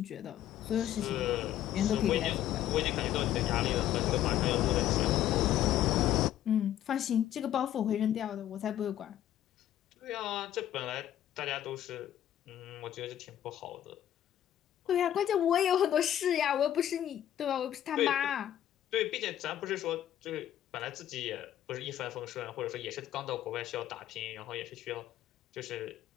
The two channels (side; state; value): right; quieter; 11.7 dB